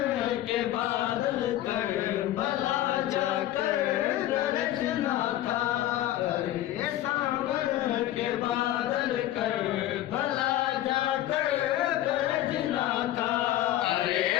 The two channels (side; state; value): right; quieter; 13.8 dB